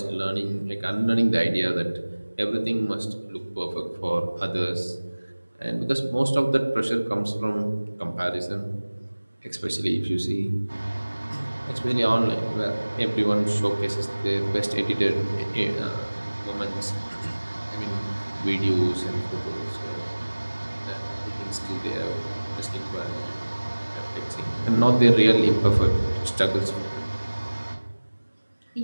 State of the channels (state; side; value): inverted; both; correlation -1.00